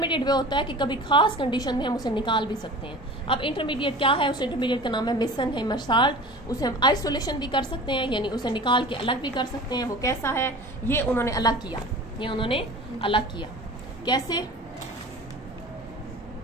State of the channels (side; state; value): both; normal; correlation 0.38